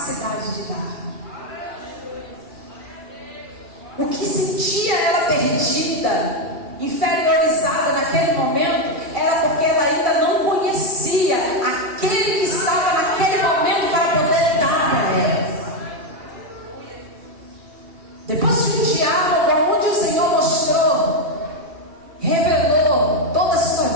de dar. O que sentia ela perdida, inferiorizada naquele momento, era porque ela ainda não conhecia aquele que estava naquele momento para poder dar para ela. Depois de um diálogo onde o Senhor mostrou, revelou toda a sua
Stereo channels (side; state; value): left; late; 2.7 ms